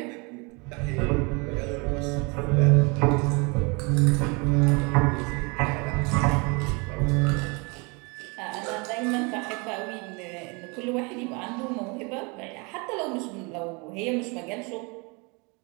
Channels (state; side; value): quieter; left; 29.9 dB